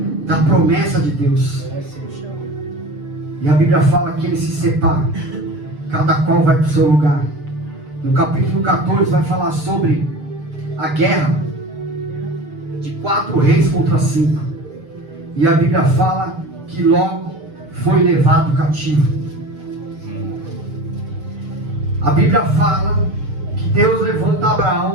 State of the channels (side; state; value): left; late; 6.8 ms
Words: da promessa de Deus. E a Bíblia fala que ele se separa. Cada qual vai para o seu lugar. No capítulo 14 vai falar sobre a guerra de 4 reis contra 5. E a Bíblia fala que logo foi levado cativo. A Bíblia fala que Deus levanta